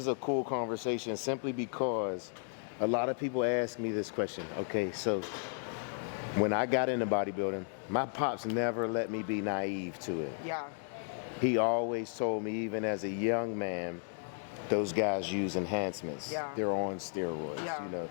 a cool conversation simply because a lot of people ask me this question. Okay, so when I got into bodybuilding, my pops never let me be naive to it. Yeah. He always told me, even as a young man, those guys use enhancements. Yeah. They're on steroids. Yeah. You know,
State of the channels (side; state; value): right; silent; 55 dB below the other